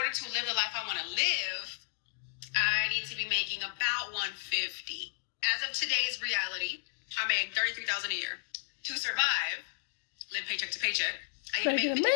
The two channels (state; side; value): silent; right; digital silence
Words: to live the life I want to live, I need to be making about $150,000. As of today's reality, I make $33,000 a year. To survive, live paycheck to paycheck, I need to make